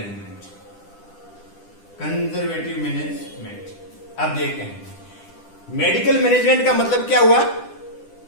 अब देखते हैं मेडिकल मैनेजमेंट का मतलब क्या हुआ?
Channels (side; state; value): right; late; 10 ms